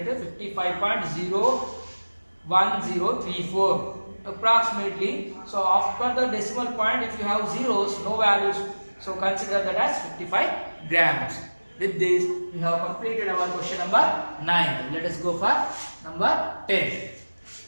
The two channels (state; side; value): inverted; both; correlation -1.00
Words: a 55.01034 approximately. So after the decimal point, if you have zeros, no values, so consider that as 55 grams. With this, we have completed our question number 9. Let us go for number 10.